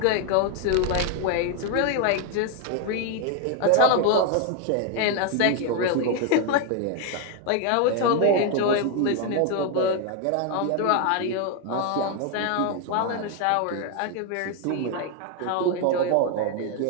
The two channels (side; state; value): both; different; correlation 0.01